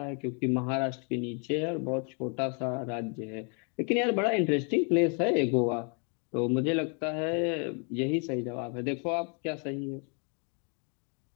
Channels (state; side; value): quieter; right; 38.7 dB